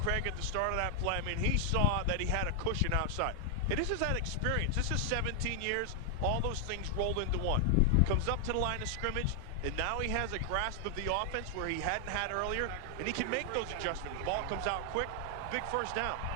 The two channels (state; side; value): different; both; correlation 0.00